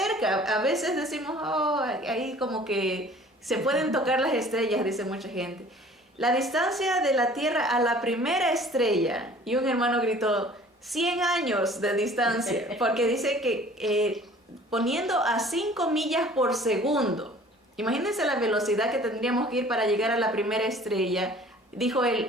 A veces decimos, oh, ahí como que se pueden tocar las estrellas, dice mucha gente. La distancia de la Tierra a la primera estrella, y un hermano gritó, 100 años de distancia, porque dice que poniendo a 5 millas por segundo, imagínense la velocidad que tendríamos que ir para llegar a la primera estrella, dijo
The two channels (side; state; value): both; normal; correlation 0.50